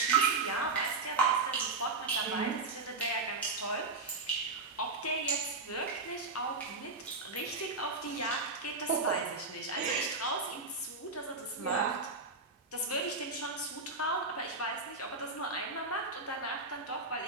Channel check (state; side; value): quieter; left; 3.7 dB